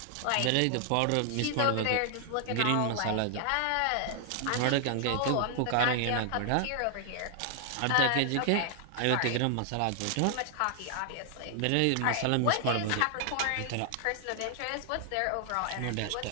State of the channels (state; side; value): different; both; correlation 0.00